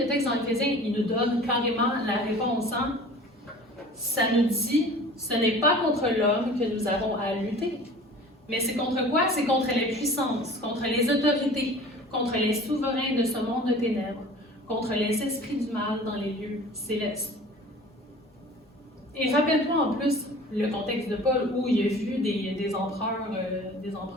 texte dans Éphésiens, il nous donne carrément la réponse. Hein? Ça nous dit, ce n'est pas contre l'homme que nous avons à lutter. Mais c'est contre quoi? C'est contre les puissances, contre les autorités, contre les souverains de ce monde de ténèbres, contre les esprits du mal dans les lieux célestes. Et rappelle-toi en plus le contexte de Paul où il a vu des empereurs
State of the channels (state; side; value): normal; both; correlation 0.43